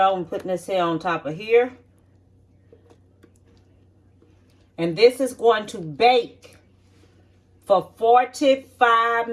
and put this here on top of here. And this is going to bake for 45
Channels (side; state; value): both; identical; correlation 1.00